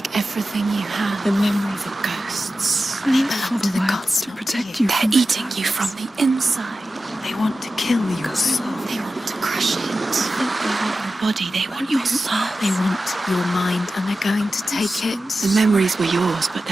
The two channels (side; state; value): both; normal; correlation 0.93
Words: everything you have. The memories of ghosts. They belong to the gods, to protect you. They're eating you from the inside. They want to kill your soul. They want to crush it. They want your body. They want your soul. They want your mind, and they're going to take it. The memories were yours, but